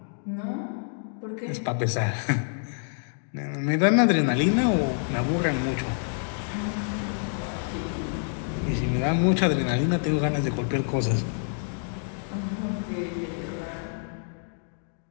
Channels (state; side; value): silent; right; digital silence